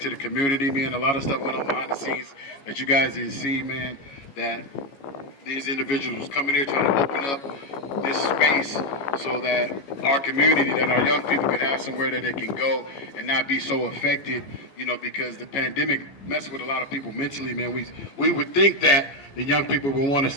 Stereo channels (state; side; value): late; right; 14 ms